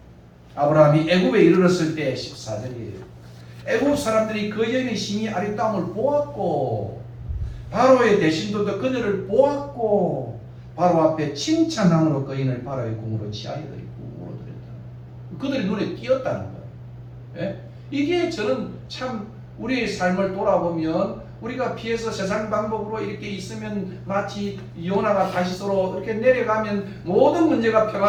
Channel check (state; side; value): identical; both; correlation 1.00